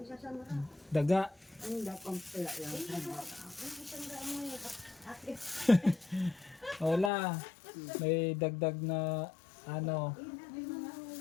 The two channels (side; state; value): right; drops out; at 7.1 s